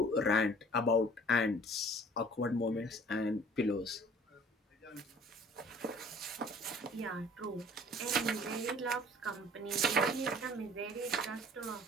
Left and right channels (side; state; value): both; normal; correlation 0.51